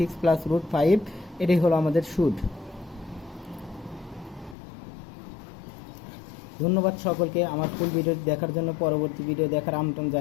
প্লাস √5 এটাই হলো আমাদের সুদ। ধন্যবাদ সকলকে আমার ফুল ভিডিও দেখার জন্য। পরবর্তী ভিডিও দেখার আমন্ত্রণ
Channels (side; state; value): right; drops out; at 4.5 s